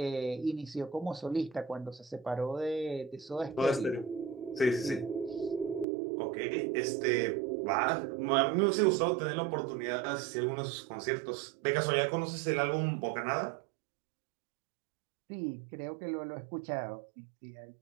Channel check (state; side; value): drops out; left; at 5.9 s